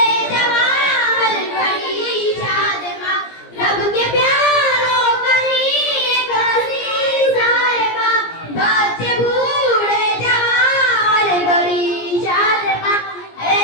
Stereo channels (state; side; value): late; right; 17 ms